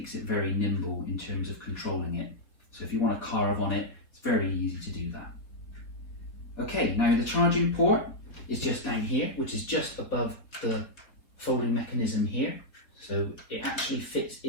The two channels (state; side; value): late; right; 4.4 ms